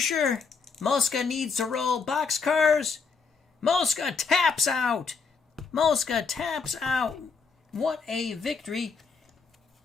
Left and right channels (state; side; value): quieter; right; 5.2 dB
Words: Mosca needs to roll boxcars. Mosca taps out. Mosca taps out. What a victory